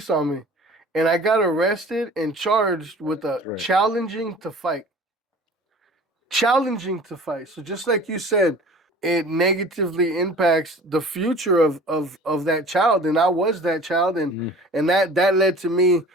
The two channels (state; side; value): normal; both; correlation 0.44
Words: on me, and I got arrested and charged with a Right. challenging to fight. So just like you said, it negatively impacts the future of that child, and I was that child, Mm, and that led to me,